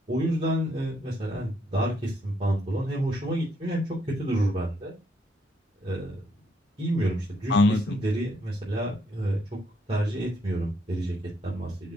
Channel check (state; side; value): normal; both; correlation 0.73